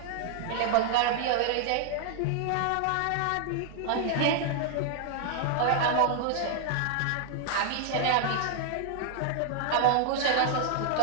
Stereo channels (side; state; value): both; different; correlation 0.00